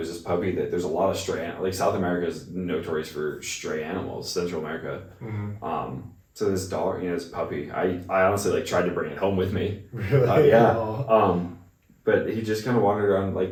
this puppy that there's a lot of stray, South America is notorious for stray animals. Central America. So this dog, this puppy, I honestly tried to bring it home with me. Really? Yeah. But he just kind of wandered around,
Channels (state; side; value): identical; both; correlation 1.00